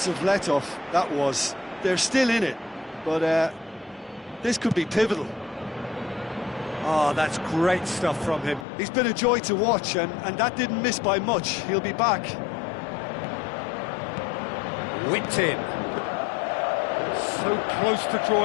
let-off that was. They're still in it, but this could be pivotal. Oh, that's great stuff from him. He's been a joy to watch, and that didn't miss by much. He'll be back. Whipped in. So close to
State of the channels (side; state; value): right; drops out; at 8.7 s